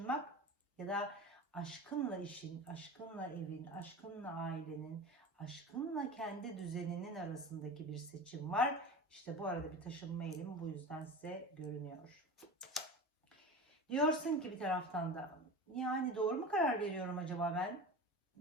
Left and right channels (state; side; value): normal; both; correlation 0.31